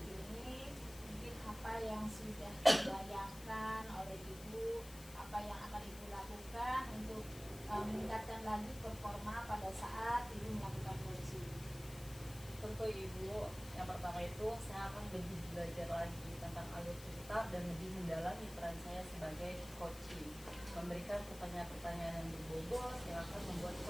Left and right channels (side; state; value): left; noise; hiss, 15 dB below the sound